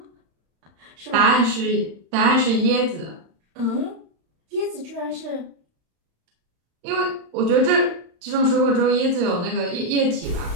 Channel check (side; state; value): left; late; 35 ms